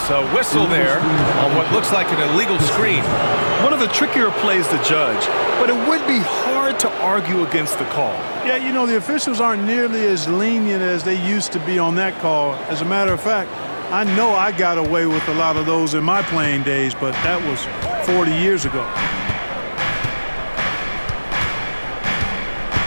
A whistle there on what looks like an illegal screen. One of the trickier plays to judge, but it would be hard to argue against the call. Yeah, you know, the officials aren't nearly as lenient as they used to be on that call. As a matter of fact, I know I got away with a lot of those in my playing days, but that was 40 years ago.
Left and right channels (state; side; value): inverted; both; correlation -1.00